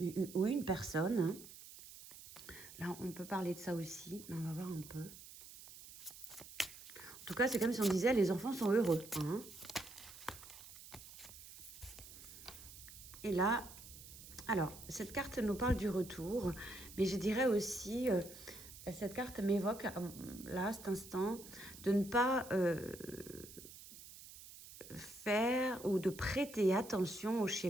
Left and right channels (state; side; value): noise; right; hiss, 16 dB below the sound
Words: ou une personne. Hein. Là, on peut parler de ça aussi, mais on va voir un peu. En tout cas, c'est comme si on disait, les enfants sont heureux. Hein. Et là, alors, cette carte nous parle du retour, mais je dirais aussi... cette carte m'évoque, là, à cet instant, de ne pas faire ou de prêter attention au